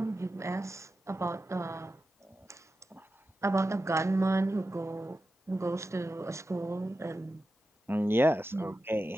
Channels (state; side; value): normal; both; correlation 0.92